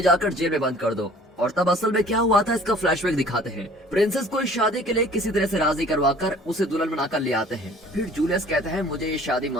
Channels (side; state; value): both; normal; correlation 0.51